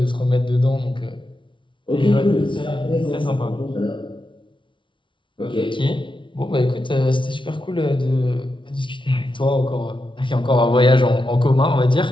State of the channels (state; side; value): late; right; 0.24 ms